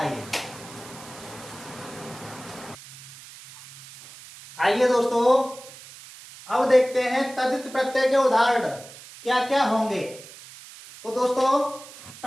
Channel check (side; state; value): right; noise; hiss, 17 dB below the sound